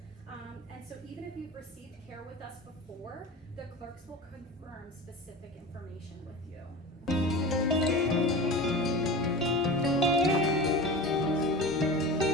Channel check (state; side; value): normal; both; correlation 0.31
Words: And so even if you've received care with us before, the clerks will confirm specific information with you.